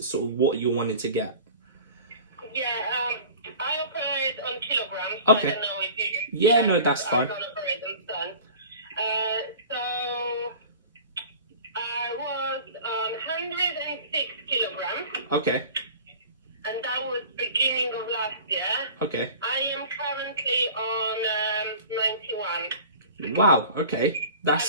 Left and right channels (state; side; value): inverted; both; correlation -0.41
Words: sort of what you're wanting to get. Yeah, I operate on kilograms. I Okay. don't know if you. Yeah. No, that's I fine. don't operate on tons. So I was on 106 kilograms, Okay. and that was beginning of last year. Okay. I am currently on 91. Wow. Okay. I've